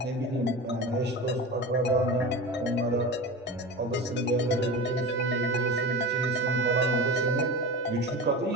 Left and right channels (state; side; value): normal; both; correlation 0.29